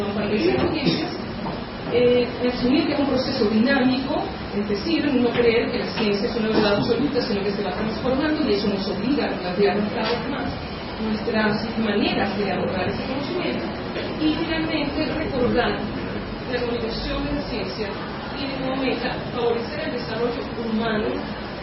parte de esas audiencias, asumir que es un proceso dinámico, es decir, no creer que la ciencia es una verdad absoluta, sino que se va transformando y eso nos obliga a replantearnos cada vez más nuestras maneras de abordar ese conocimiento. Y finalmente, recordar que la comunicación de la ciencia tiene como meta favorecer el desarrollo humano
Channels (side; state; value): both; identical; correlation 1.00